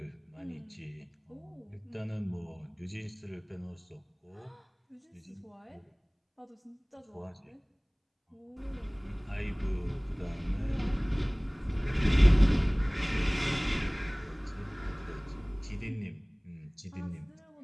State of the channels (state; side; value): identical; both; correlation 1.00